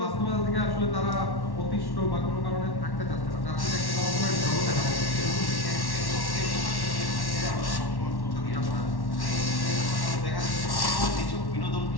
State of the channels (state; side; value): late; right; 1.1 ms